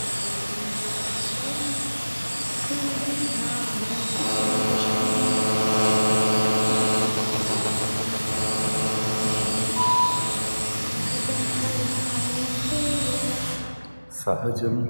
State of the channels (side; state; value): both; inverted; correlation -1.00